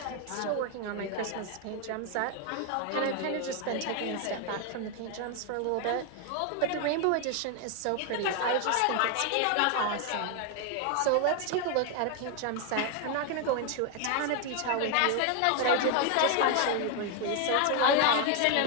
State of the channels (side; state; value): both; different; correlation 0.01